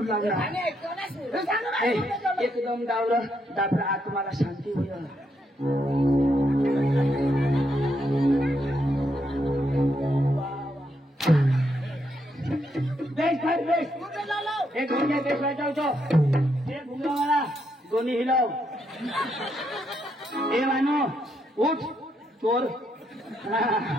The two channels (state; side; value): normal; both; correlation 0.78